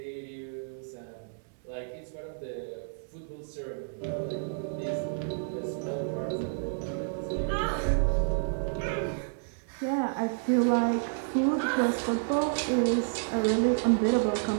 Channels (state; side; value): silent; left; digital silence